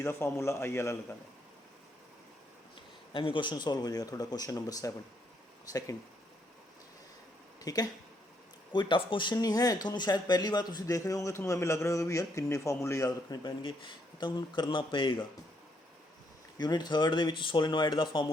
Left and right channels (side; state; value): both; normal; correlation 0.74